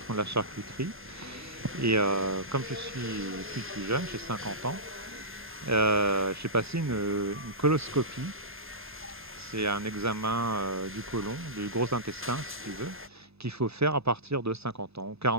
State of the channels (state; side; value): normal; both; correlation -0.18